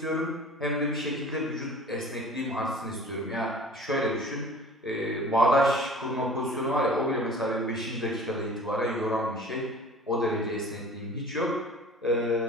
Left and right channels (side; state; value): both; normal; correlation 0.44